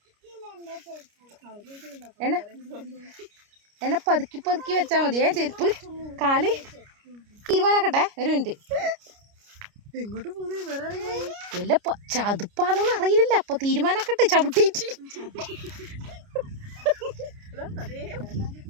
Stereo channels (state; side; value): late; left; 29 ms